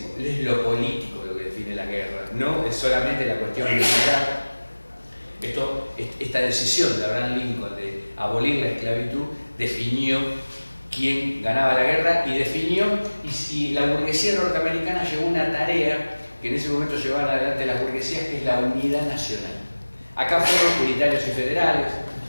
es lo político lo que define la guerra, no es solamente la cuestión militar. Esta decisión de Abraham Lincoln de abolir la esclavitud definió quién ganaba la guerra y definió, y la burguesía norteamericana llevó una tarea que en ese momento llevaban adelante las burguesías, que es la unidad nacional. Acá fueron unitarios y federales,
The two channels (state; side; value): inverted; both; correlation -1.00